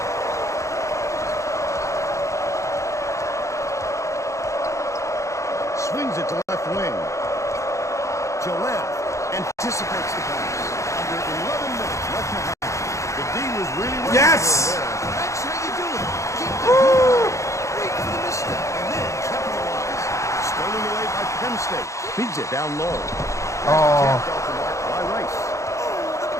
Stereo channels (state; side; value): late; right; 0.15 ms